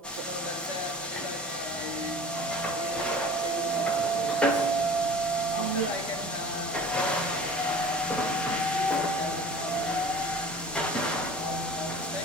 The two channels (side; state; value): both; normal; correlation 0.42